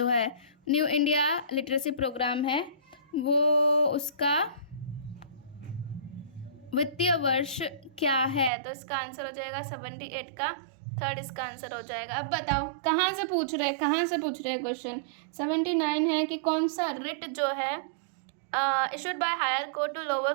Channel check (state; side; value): drops out; left; at 8.5 s